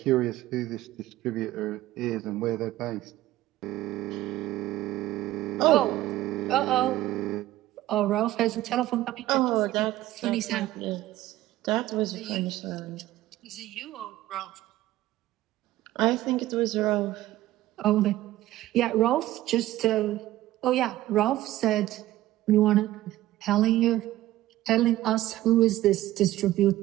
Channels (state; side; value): quieter; left; 15.4 dB